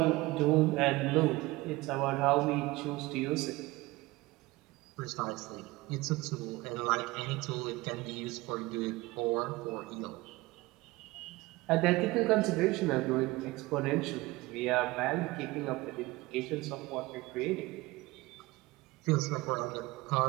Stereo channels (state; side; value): quieter; left; 20.8 dB